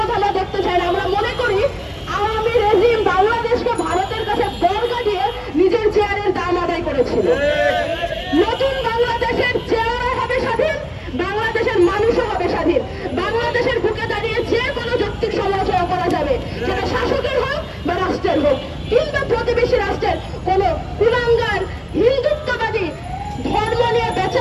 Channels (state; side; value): identical; both; correlation 1.00